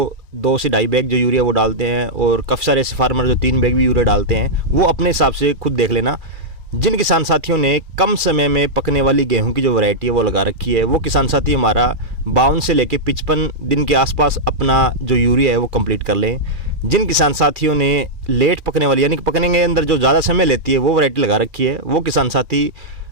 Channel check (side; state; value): left; late; 2.4 ms